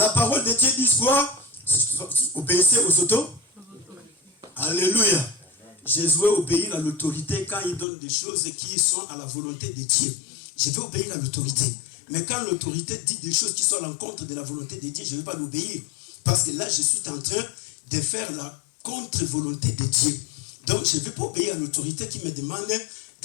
parole de Dieu dit quoi? Obéissez aux autos. Alléluia. Jésus obéit à l'autorité quand il donne des choses qui sont à la volonté de Dieu. Je vais obéir à l'autorité. Mais quand l'autorité dit des choses qui sont à l'encontre de la volonté de Dieu, je ne vais pas l'obéir. Parce que là, je suis en train de faire la contre-volonté de Dieu. Donc, je ne vais pas obéir à l'autorité qui me demande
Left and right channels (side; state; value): right; drops out; at 7.9 s